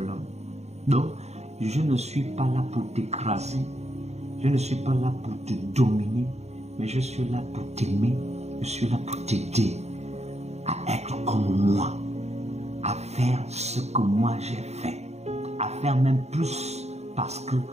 l'homme. Donc, je ne suis pas là pour t'écraser, je ne suis pas là pour te dominer, mais je suis là pour t'aimer, je suis là pour t'aider à être comme moi, à faire ce que moi j'ai fait, à faire même plus parce que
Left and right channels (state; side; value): late; left; 0.32 ms